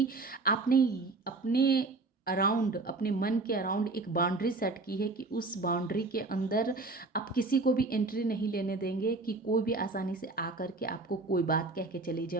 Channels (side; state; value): left; quieter; 3.5 dB